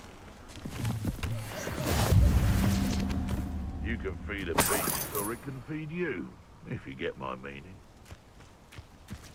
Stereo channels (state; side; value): identical; both; correlation 1.00